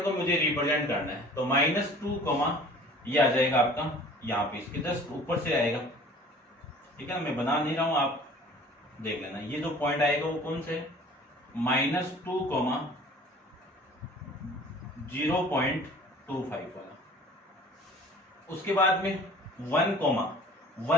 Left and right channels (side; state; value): both; normal; correlation 0.47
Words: को मुझे रिप्रेजेंट करना है, तो -2, ये आ जाएगा आपका यहाँ पे, इसके जस्ट ऊपर से आएगा। ठीक है ना, मैं बना नहीं रहा हूं, आप देख लेना। ये जो पॉइंट आएगा वो कौन से, -2, 0.25 वाला। उसके बाद में